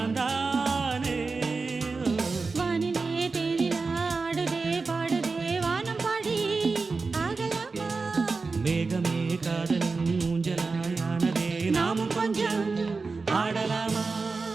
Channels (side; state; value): left; quieter; 4.2 dB